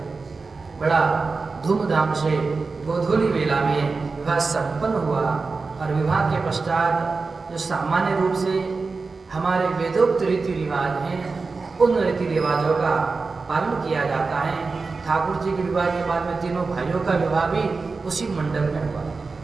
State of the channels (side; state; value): left; quieter; 4.2 dB